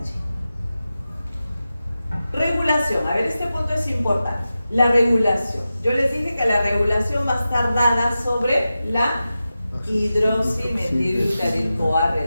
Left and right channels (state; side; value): inverted; both; correlation -0.93